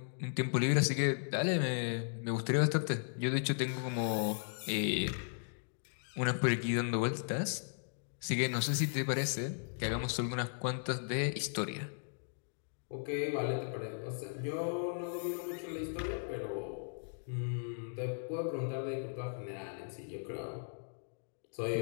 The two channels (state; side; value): silent; right; digital silence